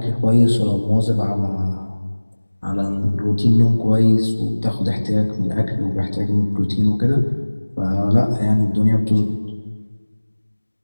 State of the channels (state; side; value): inverted; both; correlation -1.00